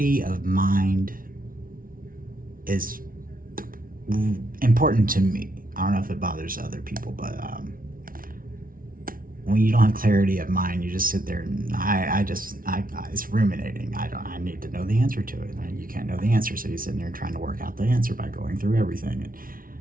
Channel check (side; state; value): left; late; 0.41 ms